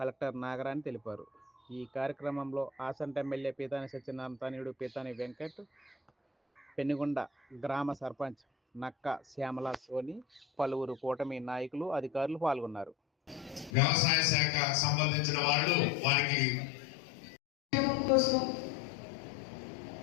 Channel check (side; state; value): right; drops out; at 13.7 s